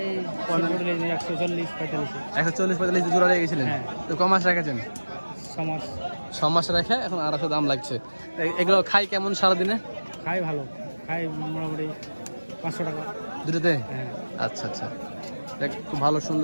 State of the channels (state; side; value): inverted; both; correlation -1.00